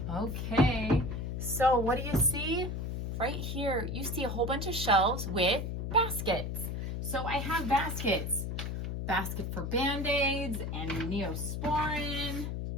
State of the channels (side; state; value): left; noise; hum, 3 dB below the sound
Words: Okay, so what do you see? Right here, you see a whole bunch of shelves with baskets. So I have baskets. Basket for Band-Aids and Neosporin.